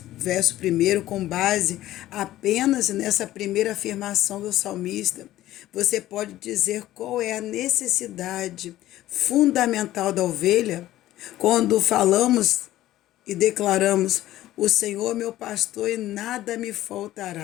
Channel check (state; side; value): quieter; right; 14.6 dB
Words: verso 1, com base apenas nessa primeira afirmação do salmista, você pode dizer qual é a necessidade fundamental da ovelha quando falamos e declaramos: O Senhor é meu pastor e nada me